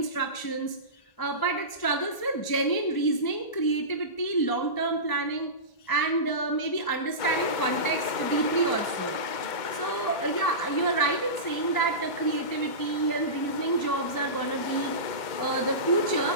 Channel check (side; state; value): right; late; 1.0 ms